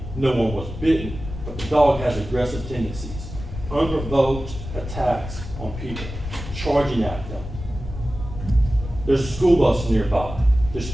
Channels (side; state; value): left; noise; rumble, 10 dB below the sound